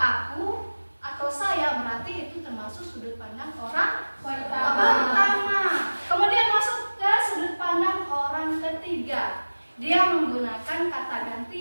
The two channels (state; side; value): inverted; both; correlation -1.00